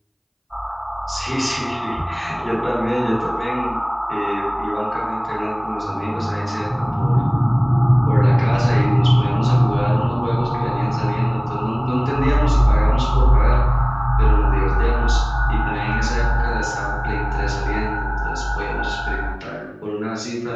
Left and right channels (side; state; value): both; identical; correlation 1.00